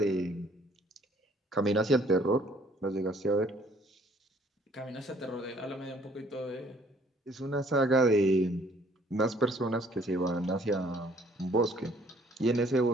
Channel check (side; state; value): both; normal; correlation 0.60